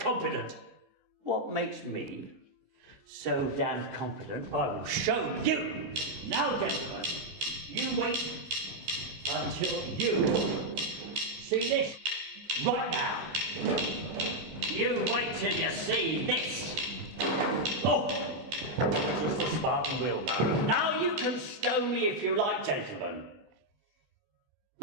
What makes me so damn confident? I will show you. Now, gentlemen, you wait until you see this right now. You wait till you see this. Oh, just a Spartan wheelbarrow. Now you can stone me if you like, gentlemen.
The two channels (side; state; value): left; late; 14 ms